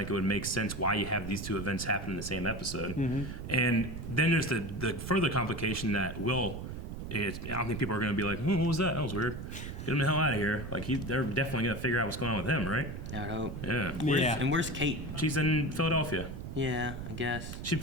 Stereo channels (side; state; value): right; noise; rumble, 8 dB below the sound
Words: it would make sense why you have these two events happen in the same episode. Mm-hmm. And then there's the further complication that I don't think people are going to be like, what was that? That was weird. Get him the hell out of here. Like, they're definitely going to figure out what's going on with him, right? I would hope. Yeah. And where's Kate? She's in Philadelphia. Yeah, I guess. She'd